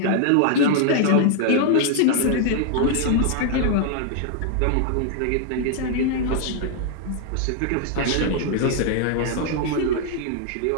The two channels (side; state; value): both; different; correlation 0.00